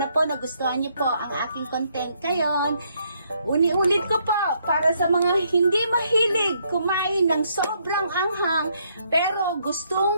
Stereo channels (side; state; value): both; inverted; correlation -0.72